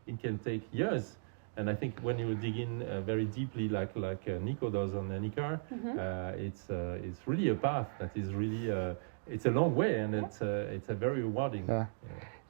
It can take years. And I think when you dig in very deeply, like Nico does on Anika, it's really a path that is really it's a long way, and it's a very rewarding. Yeah.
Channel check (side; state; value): left; silent; digital silence